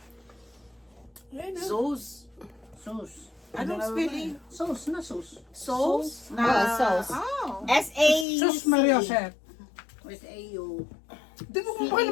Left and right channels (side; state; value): right; drops out; at 8.2 s